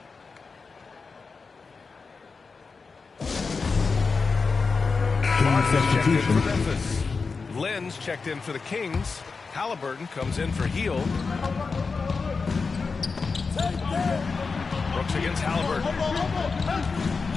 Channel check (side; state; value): right; quieter; 4.6 dB